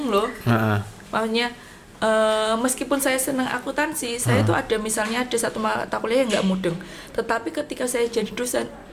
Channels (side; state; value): both; identical; correlation 1.00